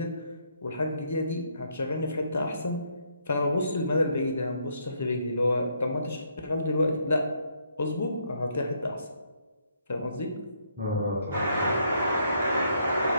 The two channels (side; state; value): both; inverted; correlation -0.71